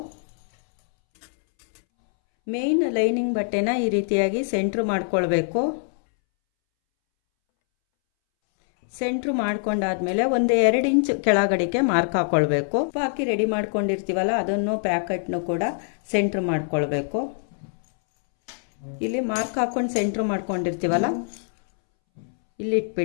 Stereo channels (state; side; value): silent; right; 63 dB below the other